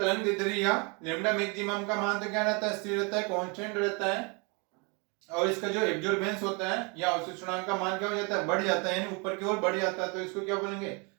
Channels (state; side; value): quieter; left; 31.9 dB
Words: दैर्ध्य या लैम्डा मैक्सिमम का मान तो क्या रहता है, स्थिर रहता है, कांस्टेंट रहता है, और इसका जो एब्जॉर्बेंस होता है या अवशोषणांक का मान क्या हो जाता है, बढ़ जाता है, यानी ऊपर की ओर बढ़ जाता है, तो इसको क्या बोलेंगे,